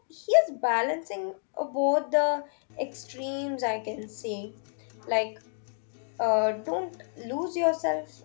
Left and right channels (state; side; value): silent; right; 58 dB below the other